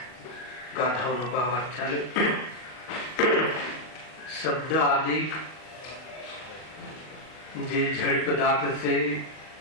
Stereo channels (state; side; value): late; right; 39 ms